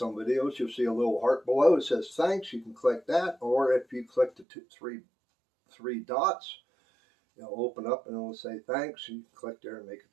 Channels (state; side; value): drops out; left; at 4.5 s